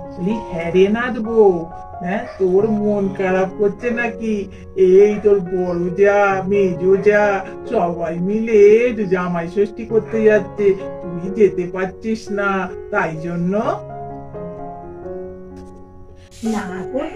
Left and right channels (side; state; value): both; identical; correlation 1.00